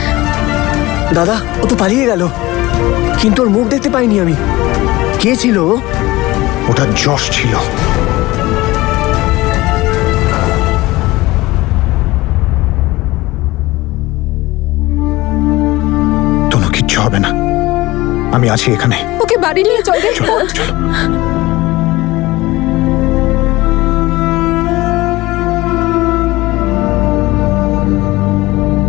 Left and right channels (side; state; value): right; quieter; 19.5 dB